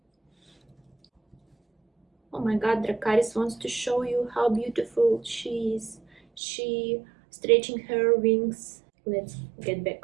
Oh my god, Dracarys wants to show you how beautiful she is. She stretching her wings. Let's get back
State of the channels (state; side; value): drops out; left; at 6.4 s